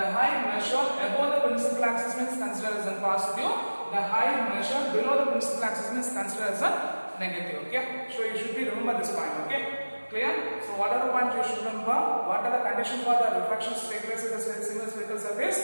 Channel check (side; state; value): both; inverted; correlation -1.00